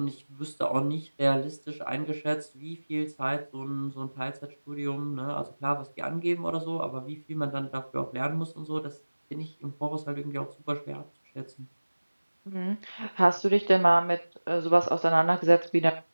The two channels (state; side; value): inverted; both; correlation -1.00